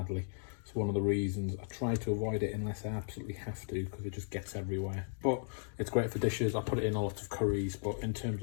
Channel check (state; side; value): silent; right; digital silence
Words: It's one of the reasons I try to avoid it unless I absolutely have to, because it just gets everywhere. But it's great for dishes. I put it in a lot of curries, but in terms